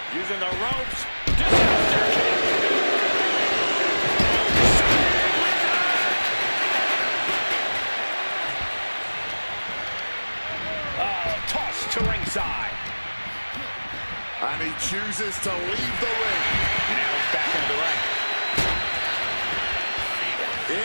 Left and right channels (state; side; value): inverted; both; correlation -1.00